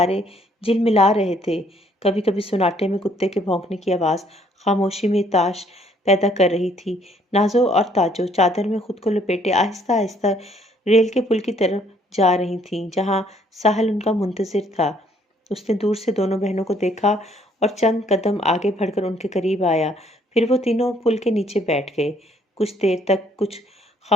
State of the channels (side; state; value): both; normal; correlation 0.64